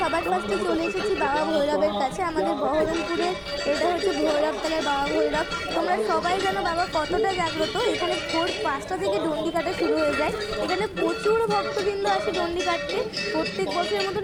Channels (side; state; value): both; identical; correlation 1.00